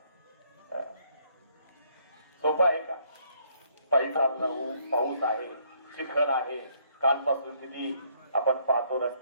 सोपं आहे का? पायी चालणं, पाऊस आहे, चिखल आहे, कालपासून किती आपण पाहतो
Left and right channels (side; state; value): both; inverted; correlation -0.68